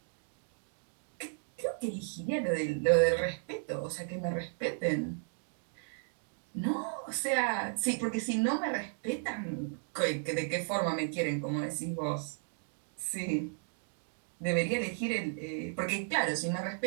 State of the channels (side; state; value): left; silent; 55 dB below the other